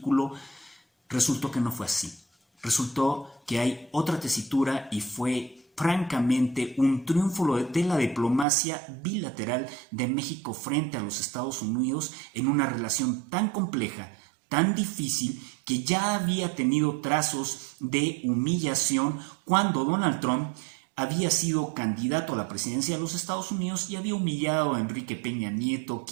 resultó que no fue así. Resultó que hay otra tesitura y fue francamente un triunfo de la diplomacia bilateral de México frente a los Estados Unidos en una relación tan compleja, tan difícil, que ya había tenido trazos de humillación cuando Donald Trump había sido candidato a la presidencia de los Estados Unidos y había humillado a Enrique Peña Nieto,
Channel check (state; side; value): drops out; left; at 8.5 s